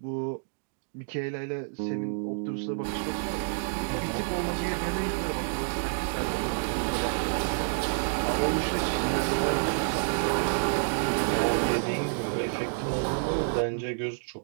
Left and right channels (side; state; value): left; silent; digital silence